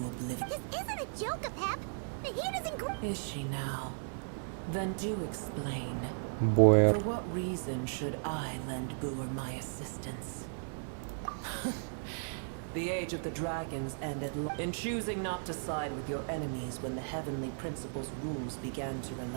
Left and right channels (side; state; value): left; silent; digital silence